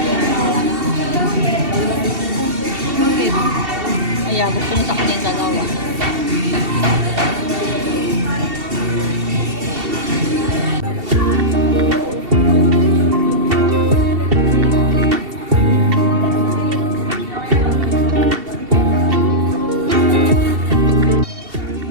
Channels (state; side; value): late; left; 2.7 ms